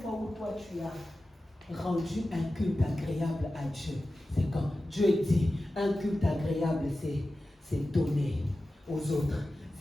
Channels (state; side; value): normal; both; correlation 0.94